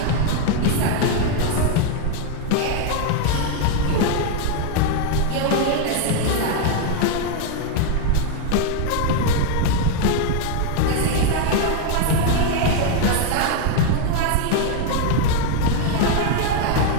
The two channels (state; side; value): different; both; correlation 0.00